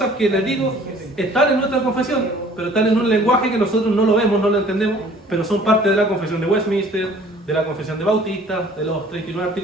que les digo están en nuestra confesión, pero están en un lenguaje que nosotros no lo vemos, no lo entendemos, pero son parte de la confesión de Westminster, de la confesión de Bautista, de los 39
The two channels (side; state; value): both; normal; correlation 0.52